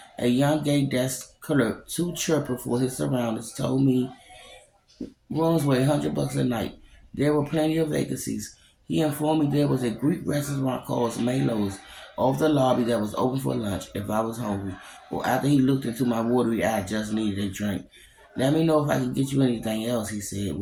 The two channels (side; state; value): both; identical; correlation 1.00